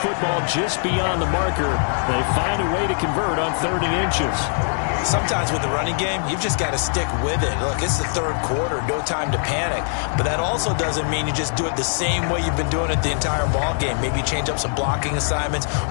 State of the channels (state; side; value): silent; right; 64 dB below the other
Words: just beyond the marker. They find a way to convert on 3rd and inches. Sometimes with the running game, you've just got to stick with it. Look, it's the 3rd quarter, no time to panic. But that also doesn't mean you just do it the same way you've been doing it the entire ball game. Maybe change up some blocking assignments